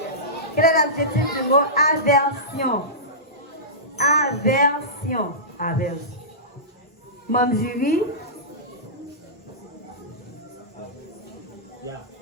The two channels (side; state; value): both; normal; correlation -0.18